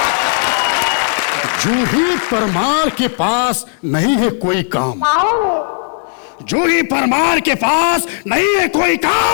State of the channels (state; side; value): silent; right; digital silence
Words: जूही परमार के पास नहीं है कोई काम। जूही परमार के पास नहीं है कोई